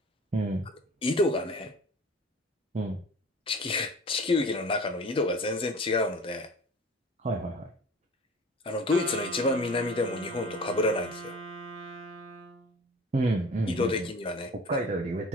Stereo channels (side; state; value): both; normal; correlation 0.41